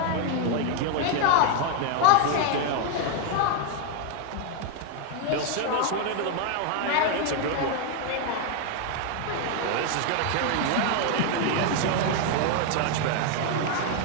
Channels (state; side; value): different; both; correlation 0.01